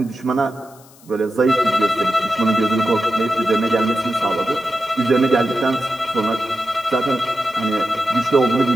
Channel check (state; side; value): noise; left; hiss, 26 dB below the sound